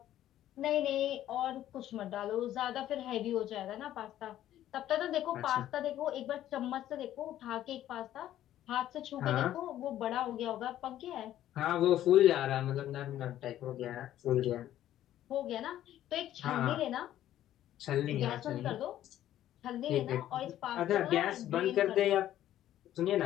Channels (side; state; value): right; quieter; 12.5 dB